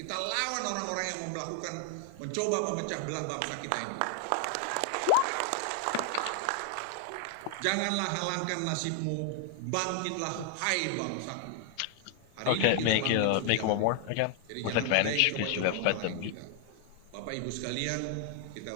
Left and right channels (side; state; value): both; different; correlation 0.00